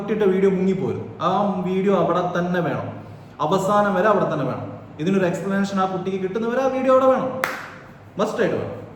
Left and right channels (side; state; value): both; identical; correlation 1.00